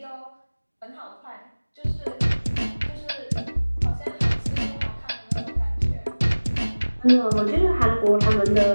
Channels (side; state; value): both; inverted; correlation -1.00